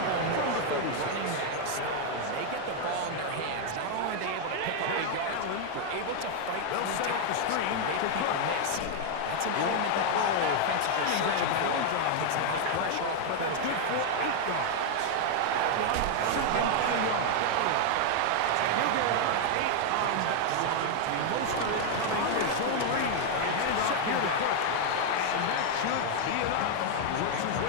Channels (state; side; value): different; both; correlation 0.00